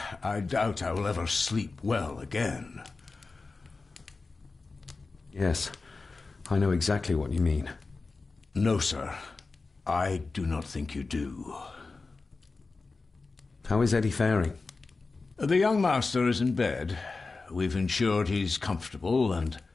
I doubt I will ever sleep well again. Yes, I know exactly what you mean. No, sir. I do not think you do. How is Eddie faring? The young master is in bed. We've ensured he's comfortable and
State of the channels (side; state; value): right; quieter; 3.9 dB